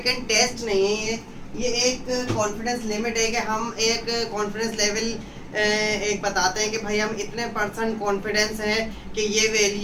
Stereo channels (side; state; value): both; identical; correlation 1.00